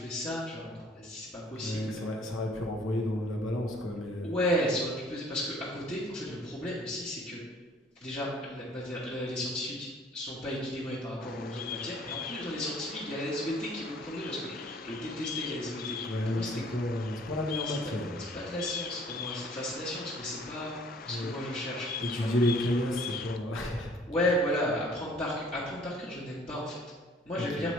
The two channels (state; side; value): normal; both; correlation 0.56